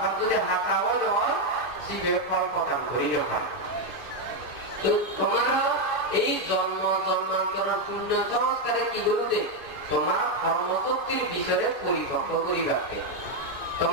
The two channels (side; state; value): left; late; 2.5 ms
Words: যদি হাঁটা হয় শিবের ফল প্রদান করিও হয় তো তোমার এই জন্ম জন্মান্তর শূন্য সংস্কারে কি করতে তোমার কর্মশক্তির বিষয়ে পরিপক্ক করিবাকে